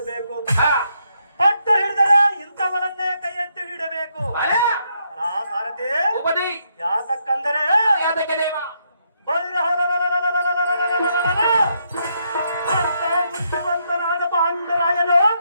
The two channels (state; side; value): inverted; both; correlation -0.77